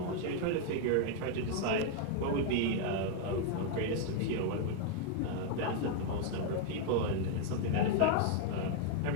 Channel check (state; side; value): different; both; correlation 0.00